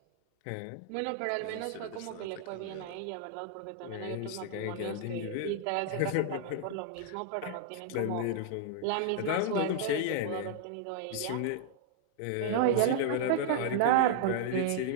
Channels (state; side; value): different; both; correlation -0.01